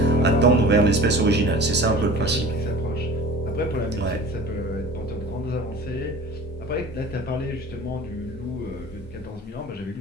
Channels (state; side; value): normal; both; correlation 0.40